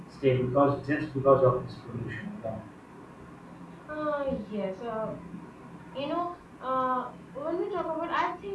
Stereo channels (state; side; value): identical; both; correlation 1.00